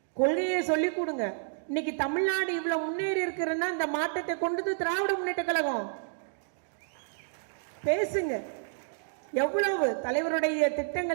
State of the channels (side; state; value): left; silent; digital silence